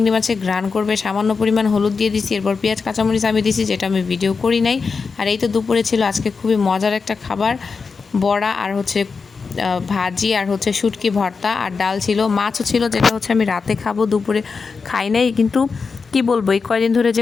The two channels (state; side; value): quieter; right; 5.0 dB